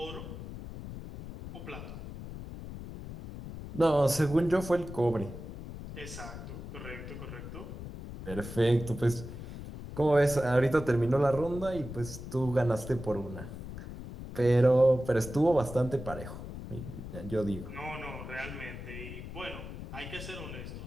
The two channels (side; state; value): left; noise; rumble, 10 dB below the sound